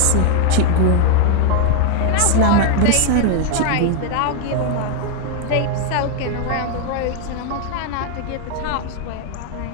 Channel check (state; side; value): different; both; correlation 0.00